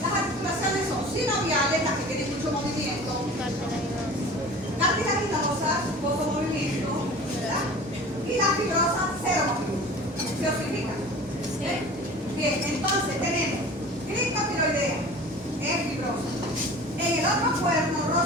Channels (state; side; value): normal; both; correlation 0.40